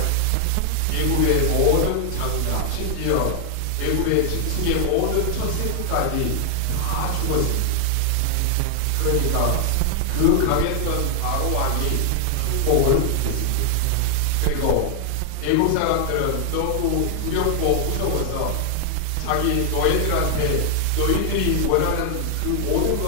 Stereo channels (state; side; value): different; both; correlation 0.00